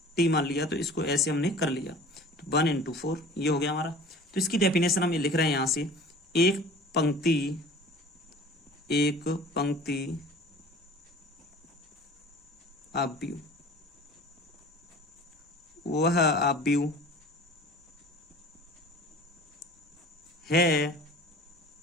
टी मान लिया, तो इसको ऐसे हमने कर लिया, तो 1 इंटू 4 ये हो गया हमारा। तो इसकी डेफिनेशन हम ये लिख रहे हैं यहाँ से, एक पंक्ति आव्यूह वह आव्यूह है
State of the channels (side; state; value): both; normal; correlation 0.43